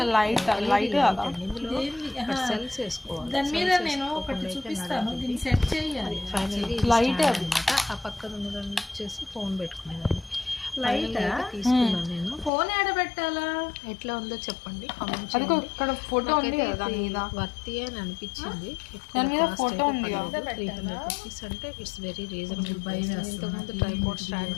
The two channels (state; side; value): drops out; right; at 12.5 s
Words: సెల్స్ వేసుకోవాలి. దాని మీద నేను ఒకటి చూపిస్తాను, దీన్ని సెట్ చేయాలి. ఫైనల్గా అనమాట. ఆ పక్కన ఉన్నదాన్ని వచ్చేసి ఫోన్ పెట్టుకునేదాన్ని. లైట్ తీసుకున్నాను నేను. ఫోన్ ఆడబెట్టాలా? ఎట్లా ఉందో చెప్పండి, కామెంట్ చేయండి. ఇక్కడ ఫోటో ఉంది కదా, దాని మీద వర్తి అని అనిపించింది. దాని మీద ఫోటో ఉంది కదా. 300 రూపీస్ అంటే ఇట్స్ వెరీ రీజనబుల్ ప్రైస్. ఇంతకుముందు ట్రైపాడ్ స్టాండ్